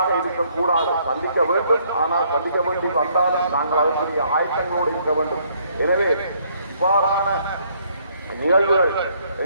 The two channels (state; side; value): inverted; both; correlation -0.67